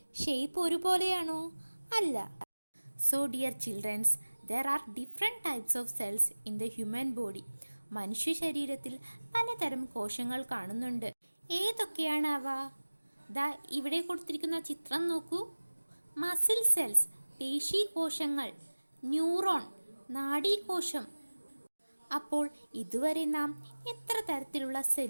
ഷേപ്പ് ഒരുപോലെയാണോ? അല്ല. So dear children's, there are different types of cells in the human body. മനുഷ്യ ശരീരത്തിൽ പലതരം കോശങ്ങൾ കാണുന്നുണ്ട്. ഏതൊക്കെയാണ് അവ? ദാ ഇവിടെ കൊടുത്തിരിക്കുന്ന ചിത്രം നോക്കൂ. മസിൽ സെൽസ്, പേശി കോശങ്ങൾ, ന്യൂറോൺ, നാഡീകോശം. അപ്പോൾ ഇതുവരെ നാം എത്ര തരത്തിലുള്ള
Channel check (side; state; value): both; inverted; correlation -1.00